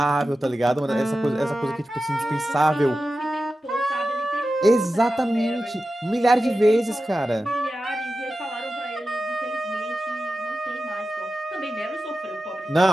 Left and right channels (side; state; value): both; normal; correlation 0.93